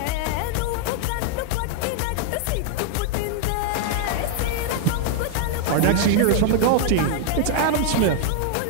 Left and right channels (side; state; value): both; different; correlation 0.00